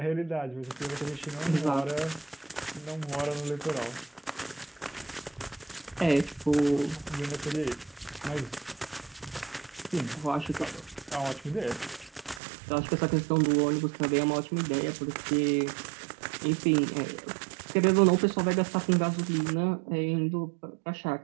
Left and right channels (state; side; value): drops out; left; at 12.4 s